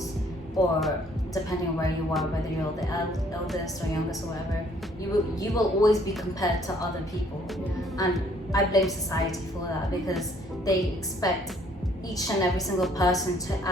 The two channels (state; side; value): normal; both; correlation 0.62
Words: or depending on where you are, whether you're the eldest or youngest or whatever, you will always be compared to other people. And I blame society for that, because they expect each and every single person to